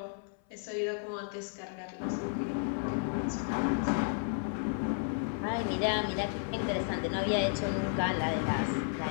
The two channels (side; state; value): right; silent; 56 dB below the other